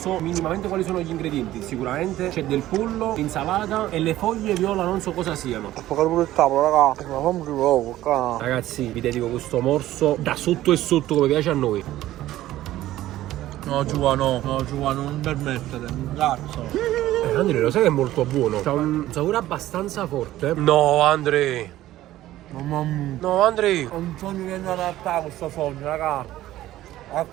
minimamente quali sono gli ingredienti. Sicuramente c'è del pollo, insalata e le foglie viola non so cosa siano. Ho pagato pure il tavolo, raga. Ma fammi poco, qua. Ragazzi, vi dedico questo morso da sotto e sotto come piace a noi. No, Giovanni, non permettete, un cazzo. Andrea, lo sai che è molto buono? C'ha un sapore abbastanza forte. No, Andrea. Mamma mia. No, Andrea. Ho un sogno che non realtà questo sogno, raga. A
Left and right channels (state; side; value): quieter; left; 14.7 dB